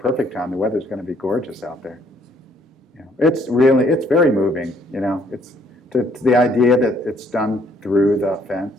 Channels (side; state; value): both; normal; correlation 0.65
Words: time. The weather's going to be gorgeous out there. It's very moving. It's the idea that it's done through the